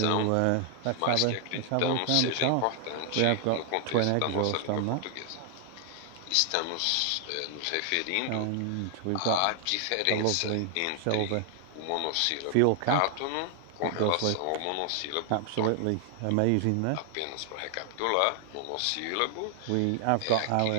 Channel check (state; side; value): different; both; correlation 0.00